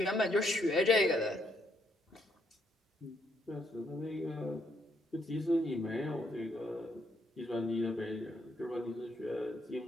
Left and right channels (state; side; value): normal; both; correlation 0.73